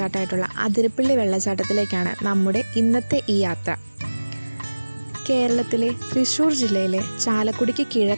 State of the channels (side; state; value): both; inverted; correlation -1.00